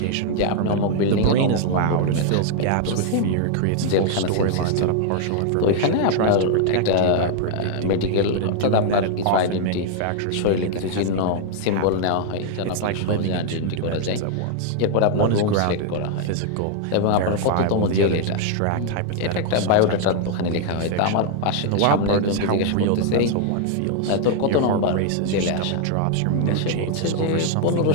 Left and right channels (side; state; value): both; different; correlation 0.00